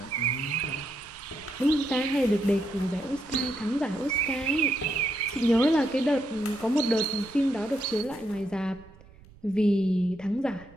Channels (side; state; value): right; noise; rumble, 24 dB below the sound